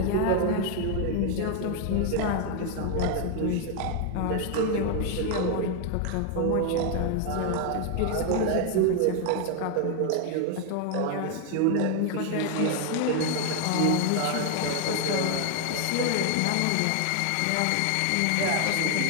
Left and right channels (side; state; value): both; different; correlation 0.01